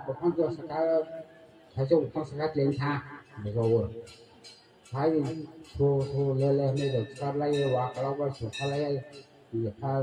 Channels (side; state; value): both; identical; correlation 1.00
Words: bukan tu sekarang, saya bukan sekarang tinggal, betul. Hai thu lele ni được sắp lấy quả kalau có sụp lấy thì phải